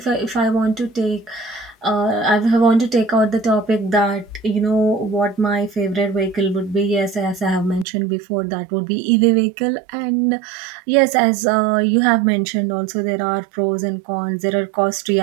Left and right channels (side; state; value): left; drops out; at 7.9 s